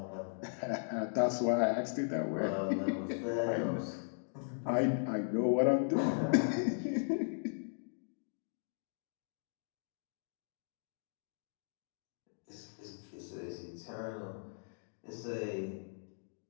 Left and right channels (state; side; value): silent; right; digital silence